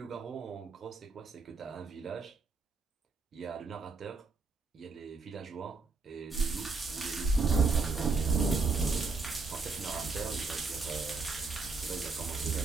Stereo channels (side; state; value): left; quieter; 4.1 dB